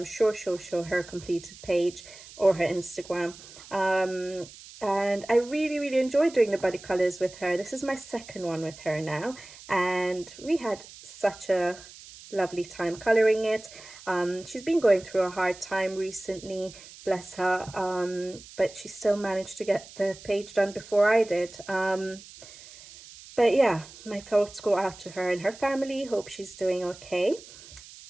sure she'll show her completed page or her Instagram. And I really enjoyed doing the buddy colours with her. This is my second one with her now, and we had such a lovely time colouring it. She's been going through a hard time recently, bless her, but she still managed to get the page done before I did. But yeah, my thoughts go out to her and her family. Hope she's doing okay.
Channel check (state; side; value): noise; right; hiss, 18 dB below the sound